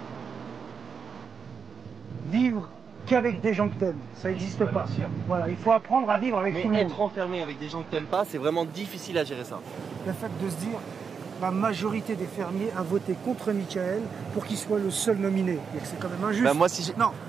Vivre qu'avec des gens que t'aimes, ça n'existe pas. Voilà, il faut apprendre à vivre avec tout le monde. Être enfermé avec des gens que t'aimes pas, c'est vraiment difficile à gérer ça. Le fait de se dire, la majorité des fermiers a voté contre Mickaël pour qu'il soit le seul nominé. Et que c'est quand même injuste. Bah moi, si non,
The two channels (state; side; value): quieter; left; 6.1 dB